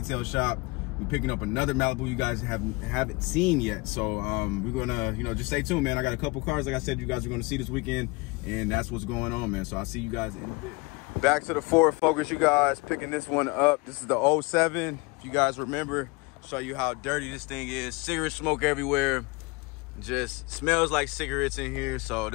shop. We're picking up another Malibu you guys haven't seen yet, so we're gonna, you know, just stay tuned, man. I got a couple cars, like I said, you guys are gonna see this weekend, and that's what's going on, man. So I'll see you guys in a bit. Back to the Ford Focus, you guys, picking this one up. This is the 07. If you guys remember, Show you how dirty this thing is. Cigarette smoke everywhere. Just smells like cigarettes in here. So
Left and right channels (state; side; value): quieter; right; 26.5 dB